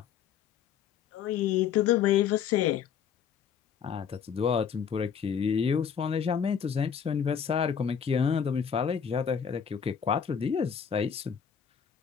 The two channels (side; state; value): right; quieter; 7.7 dB